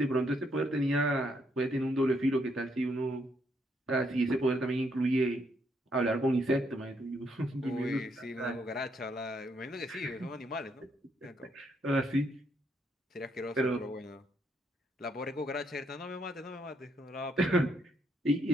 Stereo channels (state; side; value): normal; both; correlation 0.74